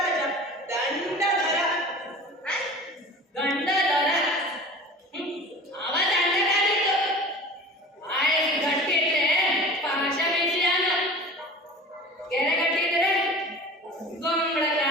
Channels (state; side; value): normal; both; correlation 0.38